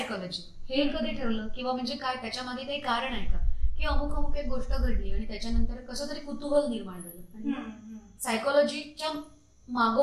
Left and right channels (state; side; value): identical; both; correlation 1.00